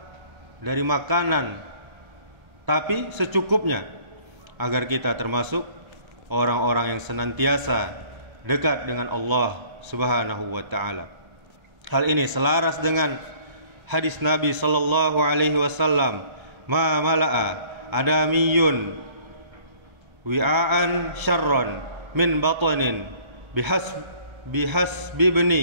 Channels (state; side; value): late; left; 1.3 ms